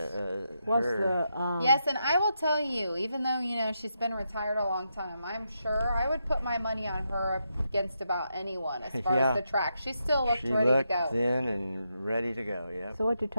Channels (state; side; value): inverted; both; correlation -0.83